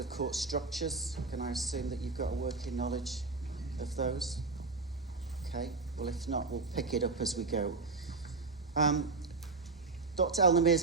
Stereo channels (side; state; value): left; quieter; 3.9 dB